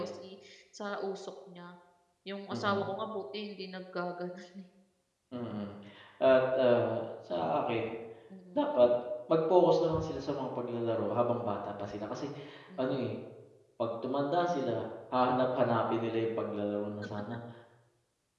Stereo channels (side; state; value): both; identical; correlation 1.00